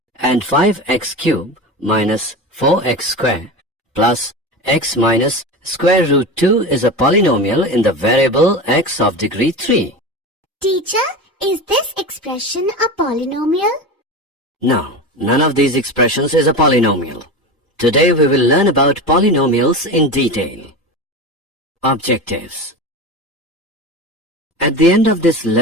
And 5x cubed minus 4x square plus x minus square root 2 is a polynomial in the variable x of degree 3. Teacher, is this expression a polynomial? No, none of these expressions is a polynomial. Today we will learn about polynomials in detail. Objectives. At the end of this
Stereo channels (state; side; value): normal; both; correlation 0.26